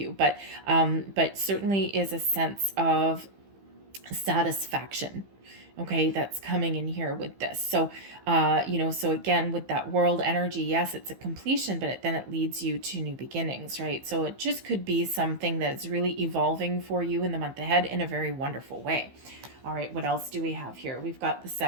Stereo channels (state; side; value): late; left; 15 ms